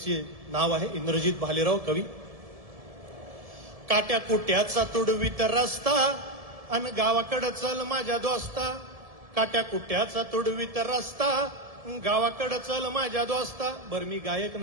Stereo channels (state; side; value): late; left; 1.7 ms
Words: नाव आहे. इंद्रजित भालेराव कवी. काट्या कुट्याचा तुडवीत रस्ता अन गावाकडं चल माझ्या दोस्ता. काट्या कुट्याचा तुडवीत रस्ता गावाकडं चल माझ्या दोस्ता. बरं मी गायक